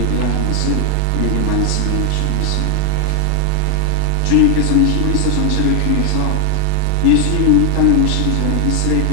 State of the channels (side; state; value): both; different; correlation 0.00